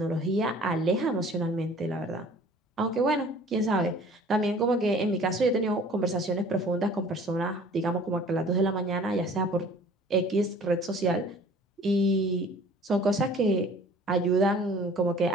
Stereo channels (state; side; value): normal; both; correlation 0.50